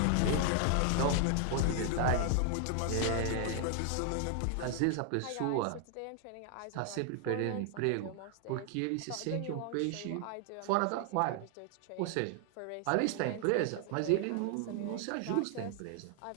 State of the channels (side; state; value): both; different; correlation 0.00